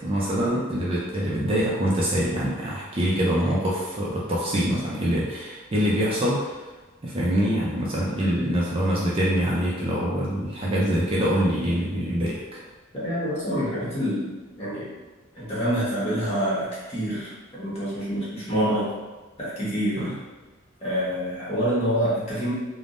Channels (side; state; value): both; normal; correlation 0.58